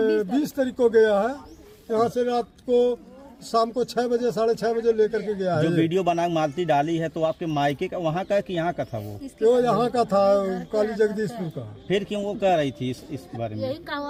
20 तारीख को गया है यहाँ से। रात को शाम को 6 बजे 6:30 बजे लेकर के गया है। जो वीडियो बना मालती डाली है तो आपके मायके का वहाँ का कि यहाँ का था? वो यहाँ का था, काली जगदीशपुर का। फिर क्यों वो कह रही थी इस बारे में? यही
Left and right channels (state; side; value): identical; both; correlation 1.00